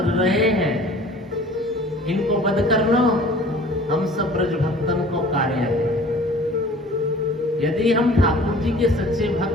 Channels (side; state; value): both; normal; correlation 0.47